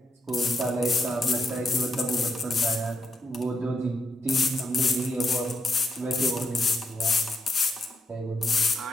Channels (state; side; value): normal; both; correlation 0.80